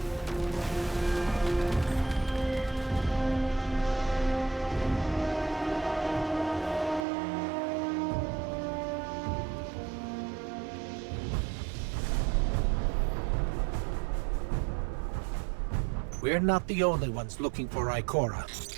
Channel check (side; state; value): left; drops out; at 7.1 s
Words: We're not the only ones looking for Ikora.